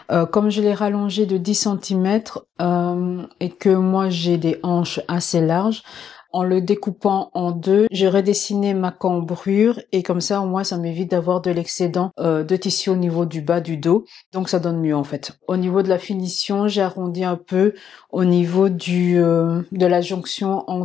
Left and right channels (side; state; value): right; quieter; 8.5 dB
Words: Comme je l'ai rallongé de 10 cm et que moi j'ai des hanches assez larges, En le découpant en deux, j'ai redessiné ma cambrure et comme ça, au moins, ça m'évite d'avoir de l'excédent de tissu au niveau du bas du dos. Donc, ça donne mieux en fait. Au niveau de la finition, j'ai arrondi un peu au niveau de la jonction